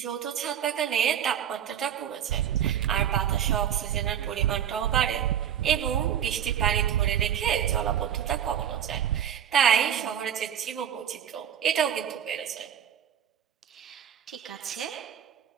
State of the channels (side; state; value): left; quieter; 9.3 dB